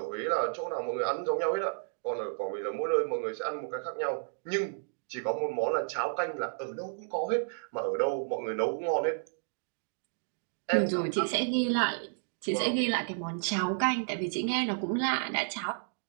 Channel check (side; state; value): left; silent; digital silence